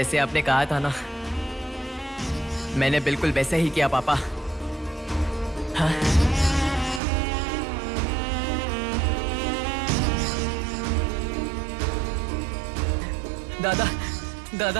आपने कहा था ना। मैंने बिल्कुल वैसे ही किया पापा। हाँ? दादा,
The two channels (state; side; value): drops out; left; at 7.0 s